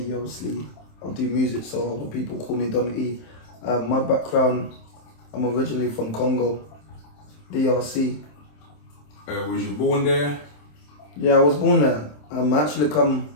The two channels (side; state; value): right; late; 27 ms